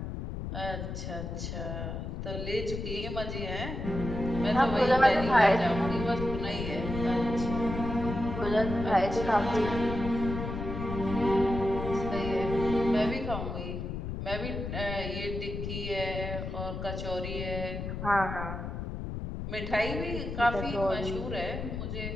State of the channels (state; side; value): noise; left; rumble, 5 dB below the sound